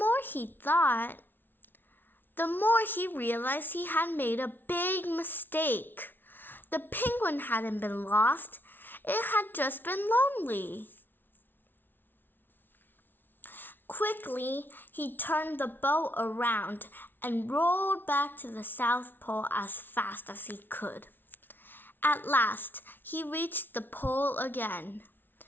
he thought, the more he realized he had made a big mistake. The penguin hadn't been lost. It had just been lonely. Quickly, he turned the boat around and rolled back to the South Pole as fast as he could. At last, he reached the pole again.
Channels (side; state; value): right; late; 0.096 ms